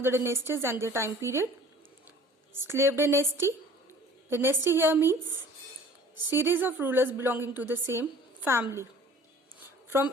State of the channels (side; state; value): both; normal; correlation 0.49